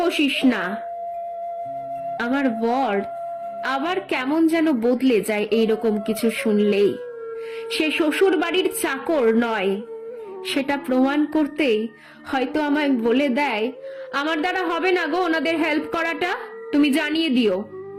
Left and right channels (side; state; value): both; identical; correlation 1.00